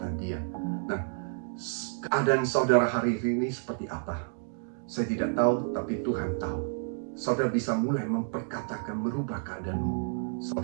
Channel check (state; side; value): silent; left; digital silence